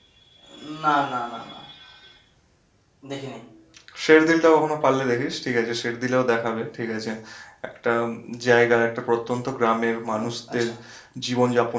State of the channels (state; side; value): identical; both; correlation 1.00